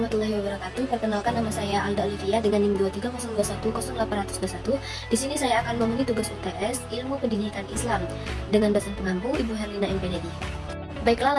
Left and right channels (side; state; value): both; identical; correlation 1.00